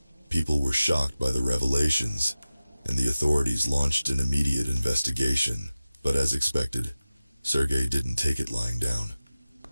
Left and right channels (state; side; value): inverted; both; correlation -0.96